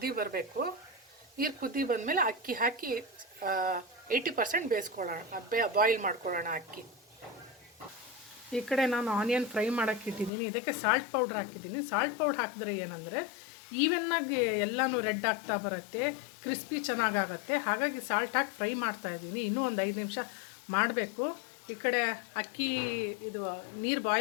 ಬರಬೇಕು. ನೀರು ಕುದಿ ಬಂದಮೇಲೆ ಅಕ್ಕಿ ಹಾಕಿ 80% ಬೇಯಿಸ್ಕೊಳ್ಳೋಣ, ಬಾಯ್ಲ್ ಮಾಡ್ಕೊಳ್ಳೋಣ ಅಕ್ಕಿ. ಈ ಕಡೆ ನಾನು ಆನಿಯನ್ ಫ್ರೈ ಮಾಡೋಕ್ಕೆ ಇಟ್ಟಿದ್ದೀನಿ. ಇದಕ್ಕೆ ಸಾಲ್ಟ್ ಪೌಡ್ರ್ ಹಾಕಿದ್ದೀನಿ. ಸಾಲ್ಟ್ ಪೌಡ್ರ್ ಹಾಕಿದ್ರೆ ಏನಂದರೆ ಈವೆನ್ನಾಗಿ ಎಲ್ಲನೂ ರೆಡ್ ಆಗ್ತಾ ಬರುತ್ತೆ, ಕ್ರಿಸ್ಪಿ ಚೆನ್ನಾಗಾಗತ್ತೆ. ಹಾಗಾಗಿ ಸಾಲ್ಟ್ ಹಾಕಿ ಫ್ರೈ ಮಾಡ್ತಾಯಿದ್ದೀನಿ. ಇನ್ನೂ ಒಂದು 5 ನಿಮಿಷ ಮಾಡಬೇಕು. ಈ ಕಡೆ ಅಕ್ಕಿ ಇದು ನೀರು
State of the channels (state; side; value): drops out; right; at 10.3 s